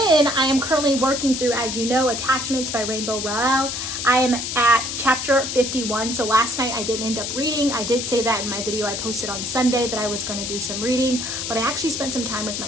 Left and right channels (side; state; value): left; noise; hiss, 4 dB below the sound